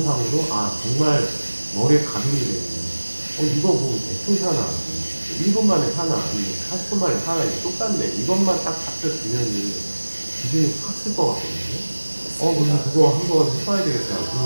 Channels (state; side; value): inverted; both; correlation -1.00